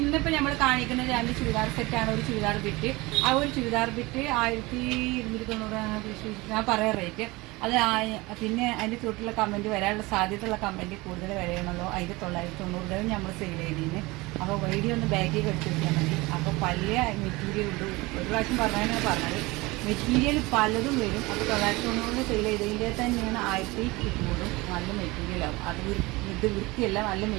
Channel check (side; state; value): left; quieter; 22.5 dB